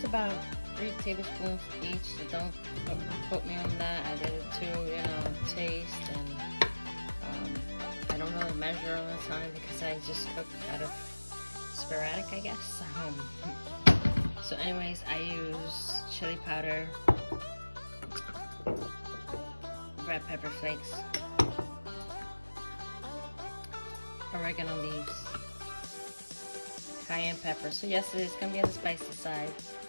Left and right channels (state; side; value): inverted; both; correlation -1.00